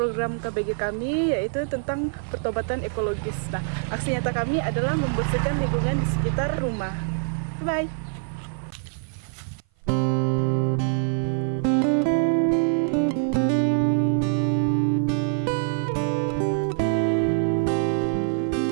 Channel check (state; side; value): silent; left; 57 dB below the other